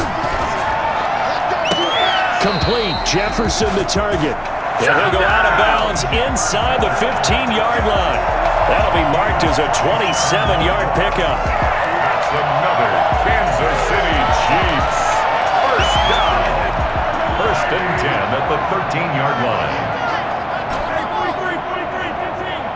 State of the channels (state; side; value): identical; both; correlation 1.00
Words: Complete. Jefferson the target. And he'll go out of bounds inside the 15-yard line. That'll be marked as a 27-yard pickup. That's another Kansas City Chiefs. First down. First and 10 at the 13-yard line.